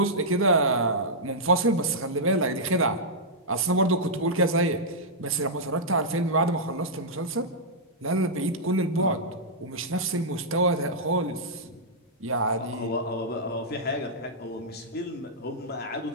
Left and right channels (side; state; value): both; normal; correlation -0.10